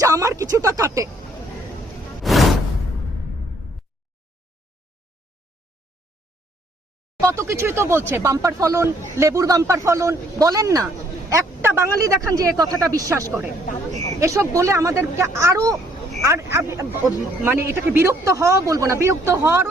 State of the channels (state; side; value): normal; both; correlation 0.65